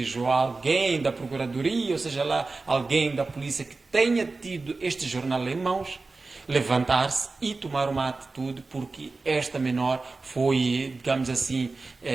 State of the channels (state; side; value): quieter; left; 3.7 dB